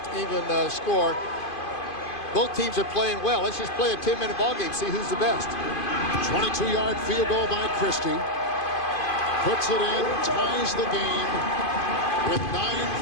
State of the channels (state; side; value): late; right; 2.5 ms